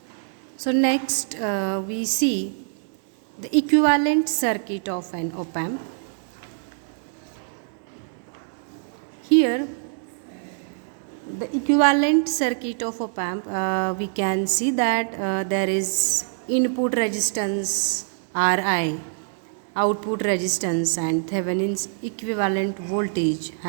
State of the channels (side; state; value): left; silent; digital silence